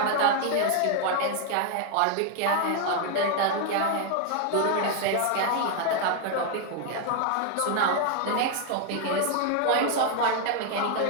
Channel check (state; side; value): different; both; correlation 0.00